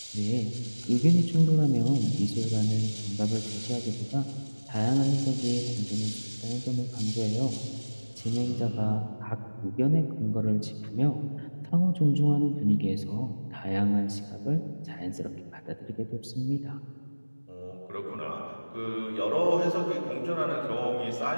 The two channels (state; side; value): inverted; both; correlation -1.00